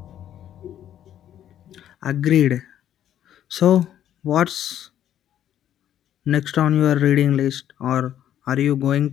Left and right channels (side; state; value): right; quieter; 10.9 dB